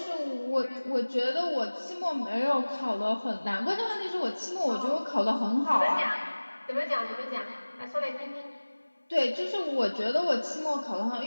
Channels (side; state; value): both; inverted; correlation -1.00